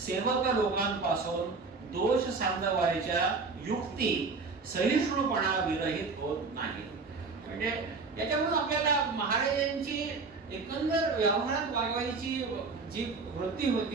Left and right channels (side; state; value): left; quieter; 4.3 dB